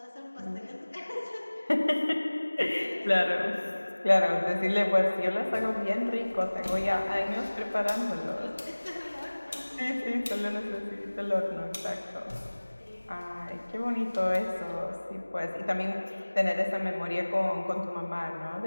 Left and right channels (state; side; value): inverted; both; correlation -1.00